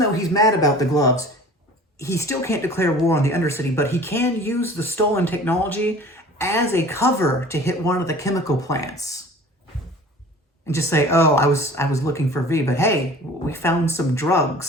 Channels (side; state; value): both; normal; correlation 0.44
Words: he's mad about the gloves, he still can't declare war on the Undercity, but he can use the stolen technology as a cover to hit one of the chemical plants. And just say, oh, I was looking for V, but hey, we found some